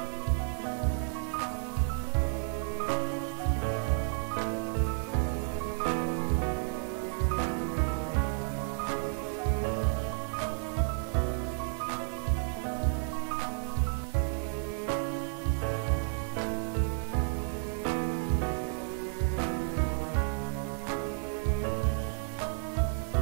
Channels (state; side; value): silent; left; 56 dB below the other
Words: Y le pasamos el foco dentro del botón salir. Si no sabes algunas cosas importantes o básicas, lo que es Java, que es un foco, que es dar el foco desde otro componente a otro componente, mira los tutoriales básicos que también estoy desarrollando para ustedes. Como veis, aquí me